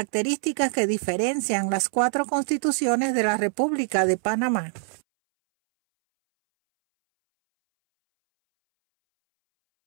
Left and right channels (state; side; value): silent; left; 62 dB below the other